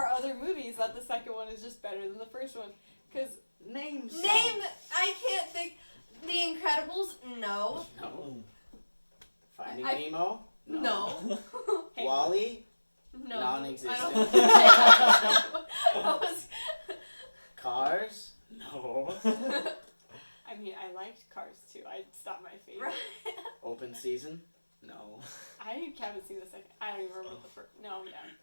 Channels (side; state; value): both; inverted; correlation -1.00